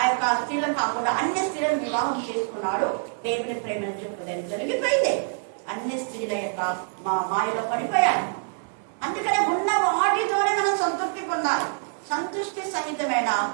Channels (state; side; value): silent; left; digital silence